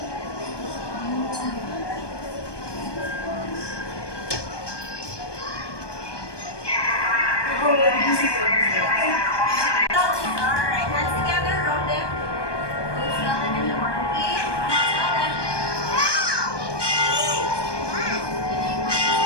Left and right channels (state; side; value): late; right; 1.2 ms